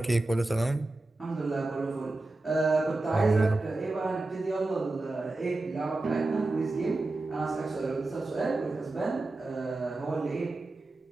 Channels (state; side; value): quieter; left; 3.0 dB